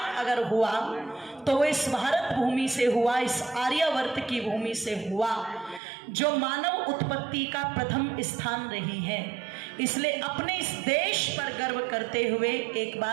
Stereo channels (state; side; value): drops out; left; at 5.8 s